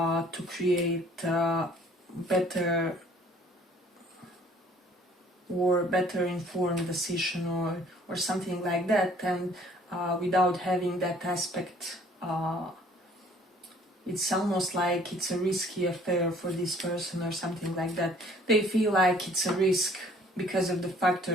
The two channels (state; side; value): normal; both; correlation 0.56